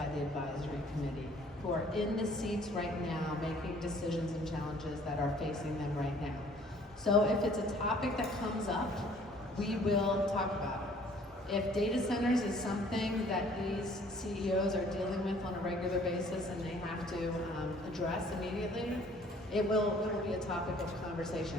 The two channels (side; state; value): both; normal; correlation 0.56